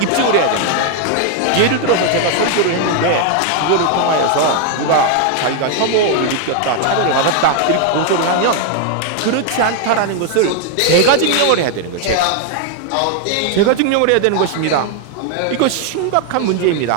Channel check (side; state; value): both; different; correlation 0.00